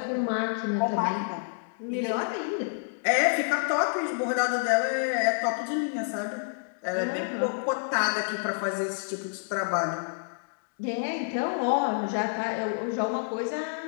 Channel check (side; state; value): right; silent; digital silence